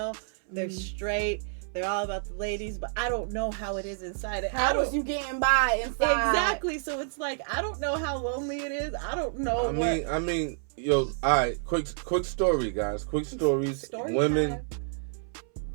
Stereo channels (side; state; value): left; silent; 59 dB below the other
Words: they're straight, they're all about the ladies, but I don't know how it is inside. How was you getting by inside? Exactly. So it's like I don't know how lonely it is. I don't know. I mean, yo, all right. Quick story, guys. Quick stories. Story Women, time.